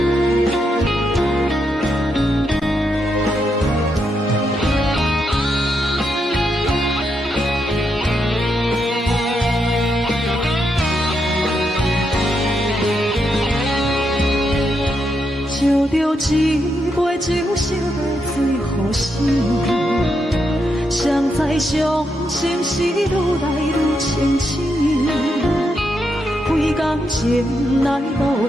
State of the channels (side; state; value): both; normal; correlation 0.81